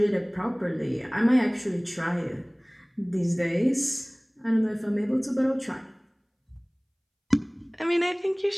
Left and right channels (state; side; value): identical; both; correlation 1.00